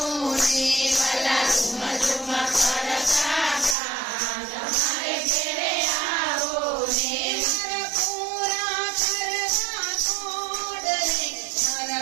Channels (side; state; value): left; drops out; at 3.8 s